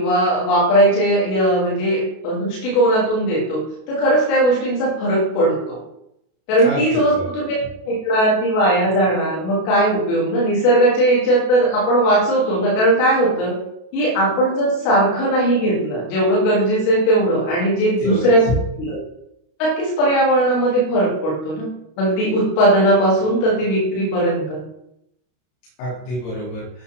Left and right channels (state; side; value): late; right; 32 ms